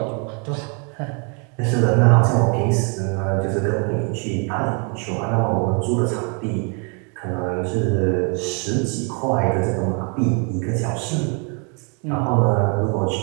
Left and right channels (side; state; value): left; quieter; 36.3 dB